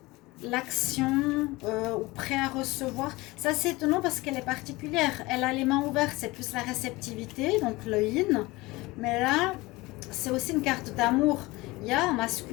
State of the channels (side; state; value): right; quieter; 21.5 dB